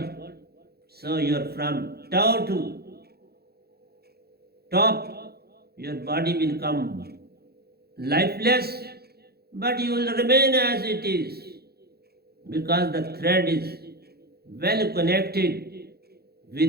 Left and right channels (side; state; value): left; late; 0.46 ms